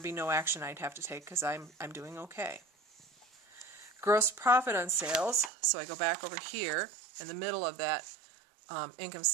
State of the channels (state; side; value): drops out; left; at 5.5 s